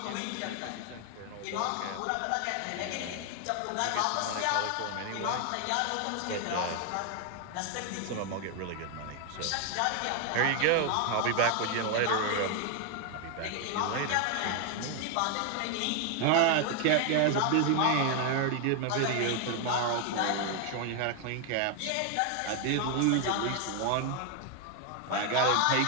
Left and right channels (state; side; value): different; both; correlation 0.00